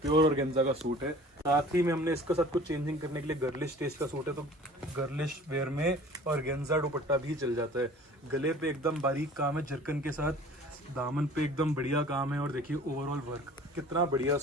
प्योर ऑर्गेन्जा का सूट है। साथ ही में हमने इसका साथ कुछ चेंजिंग करने के लिए गर्लिश टेस्ट का सूट है, तो गर्लिश वेयर में ऑर्गेन्जा दुपट्टा भी चल जाता है। गले पे एकदम बारीक काम है जरकन के साथ, दामन पे एकदम बढ़िया काम है, और देखिए ओवरऑल वर्क कितना बढ़िया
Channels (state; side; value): normal; both; correlation 0.47